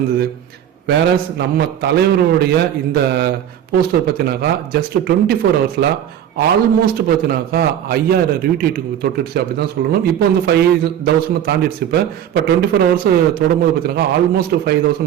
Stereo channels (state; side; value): quieter; left; 10.2 dB